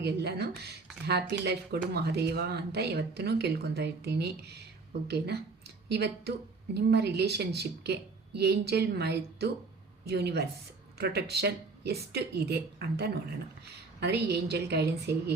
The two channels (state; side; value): quieter; left; 4.0 dB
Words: ಹ್ಯಾಪಿ ಲೈಫ್ ಕೊಡು ಮಹಾದೇವ ಅಂತ ಯಾವತ್ತೂ ಕೇಳ್ಕೊತಾ ಇರ್ತೀನಿ. ಓಕೆನಾ? ಇವತ್ತು ನಿಮ್ಮ ರಿಲೇಷನ್ಶಿಪ್ಗೆ ಏಂಜಲ್ ಮತ್ತು ಯೂನಿವರ್ಸ್ ಪ್ರೊಟೆಕ್ಷನ್ ಎಷ್ಟು ಇದೆ ಅಂತ ನೋಡೋಣ. ಅಂದರೆ ಏಂಜಲ್ ಗೈಡೆನ್ಸ್ ಹೇಗೆ,